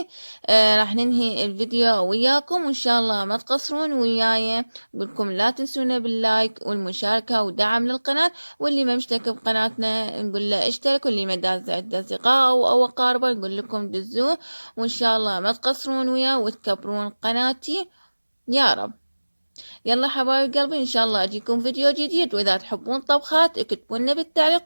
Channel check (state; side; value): inverted; both; correlation -1.00